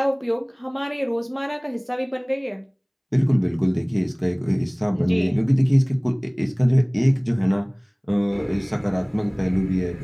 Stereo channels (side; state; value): both; identical; correlation 1.00